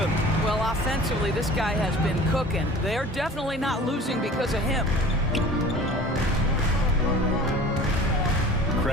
Well, offensively, this guy has been cooking. They're definitely not losing because of him.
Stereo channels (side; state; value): both; normal; correlation 0.43